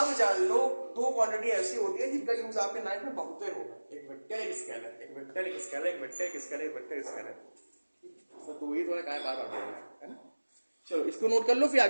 जान लो दो क्वांटिटी ऐसी होती है जिनका यूज आपके लाइफ में बहुत होगा, एक वेक्टर एक स्केलर, एक वेक्टर एक स्केलर, एक वेक्टर एक स्केलर, एक वेक्टर स्केलर। तो वही थोड़ा काय बार बार बोलना है ना। चलो इसको नोट कर लो, फिर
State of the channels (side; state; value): both; inverted; correlation -1.00